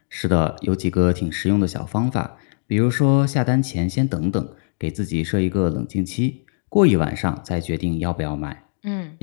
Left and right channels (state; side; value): silent; right; digital silence